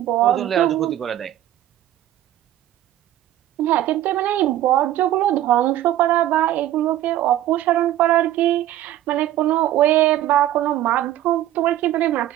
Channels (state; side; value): quieter; left; 13.2 dB